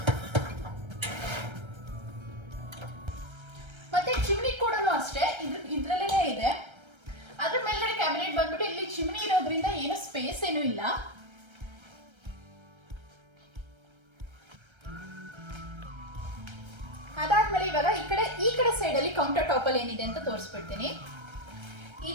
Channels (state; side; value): late; left; 1.3 ms